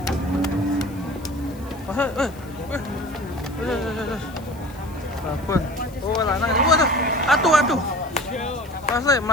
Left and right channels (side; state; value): left; noise; hiss, 24 dB below the sound